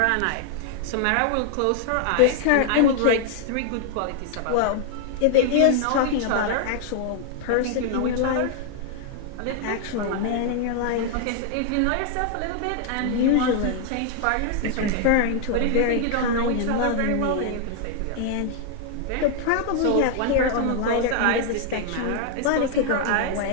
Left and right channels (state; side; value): different; both; correlation 0.00